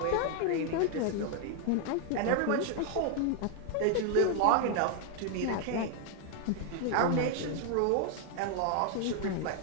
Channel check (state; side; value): different; both; correlation 0.01